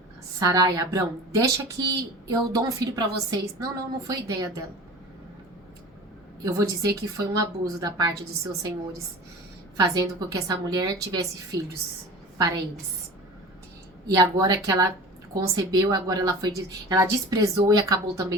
Sarai, Abrão, deixa que eu dou um filho para vocês. Não foi ideia dela. Eu vou dizer que foi um abuso da parte dos seus senhores, fazendo com que essa mulher tivesse filhos para eles. E agora que ela concebeu, agora ela desprezou e acabou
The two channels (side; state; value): both; normal; correlation 0.38